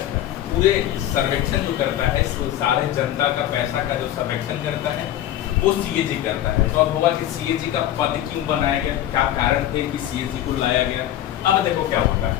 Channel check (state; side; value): quieter; right; 12.4 dB